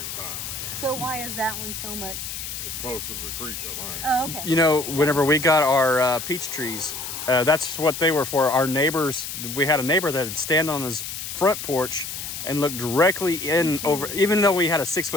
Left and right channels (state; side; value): noise; left; hiss, 7 dB below the sound